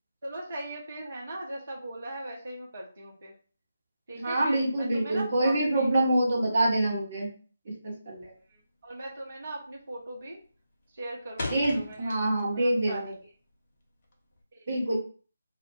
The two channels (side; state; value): both; inverted; correlation -0.87